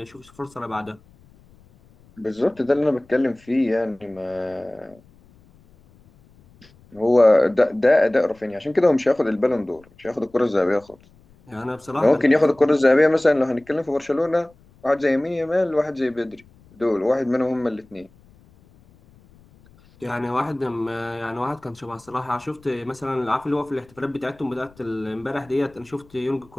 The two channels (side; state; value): left; noise; rumble, 28 dB below the sound